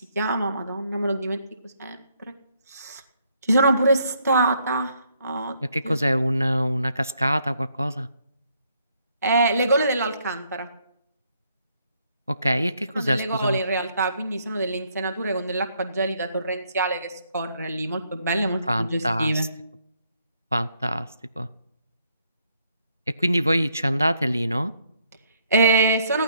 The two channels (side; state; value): both; inverted; correlation -0.71